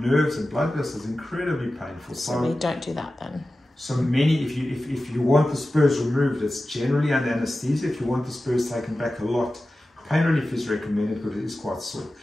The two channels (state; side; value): normal; both; correlation 0.94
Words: and blood vessels, incredibly painful. So we don't do that then. So if you want the spurs removed, it's generally under anesthesia. If you want the spurs taken back a lot, pain relief is recommended because it is quite sore.